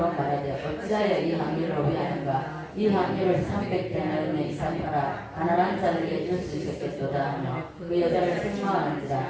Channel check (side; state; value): both; identical; correlation 1.00